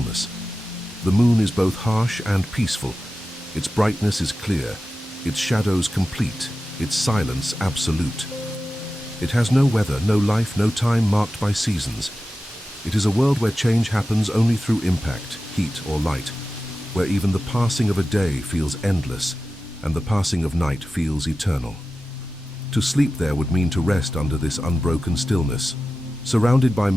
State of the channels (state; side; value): normal; both; correlation 0.94